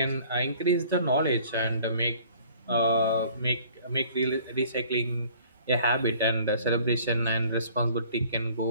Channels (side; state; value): both; inverted; correlation -0.54